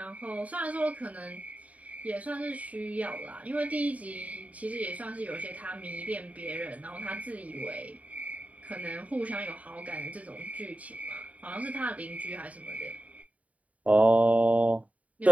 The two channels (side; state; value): left; late; 0.069 ms